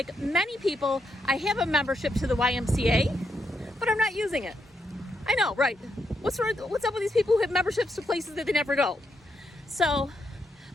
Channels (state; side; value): normal; both; correlation 0.80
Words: many people, I have a membership to the YMCA, but I'm not using it. I know, right? What's up with these people who have memberships to places that they never go? So